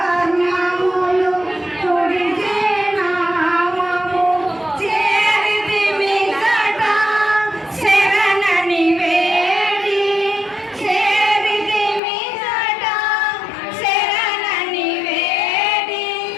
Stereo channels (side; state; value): right; drops out; at 12.0 s